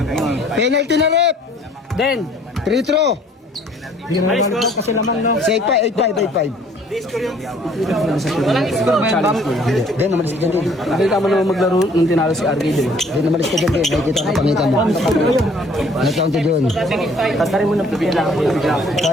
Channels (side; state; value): both; normal; correlation 0.58